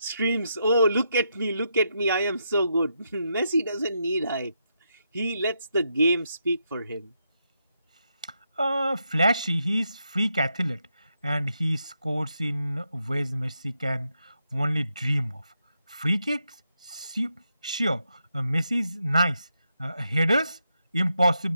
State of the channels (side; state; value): both; inverted; correlation -0.83